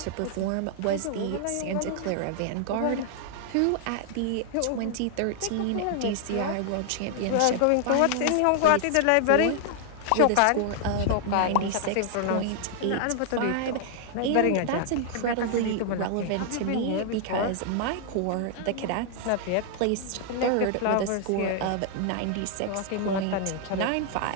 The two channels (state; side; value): different; both; correlation -0.01